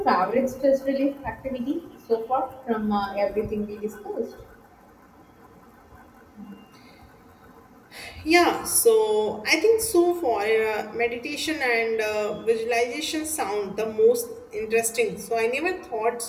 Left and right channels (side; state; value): both; identical; correlation 1.00